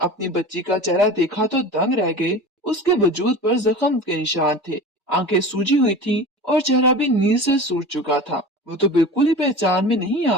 बच्ची का चेहरा देखा तो दंग रह गए। उसके वजूद पर जख्म के निशान थे, आंखें सूजी हुई थी और चेहरा भी नींद से सूज चुका था। वो तो बिल्कुल ही पहचान में नहीं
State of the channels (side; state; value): both; normal; correlation 0.34